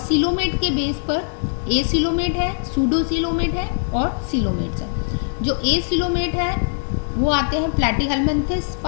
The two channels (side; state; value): right; silent; digital silence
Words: के बेस पर एसिलोमेट है, सूडोसिलोमेट है और सिलोमेट्स है. जो एसिलोमेट है वो आते हैं प्लैटीहेलमिन्थस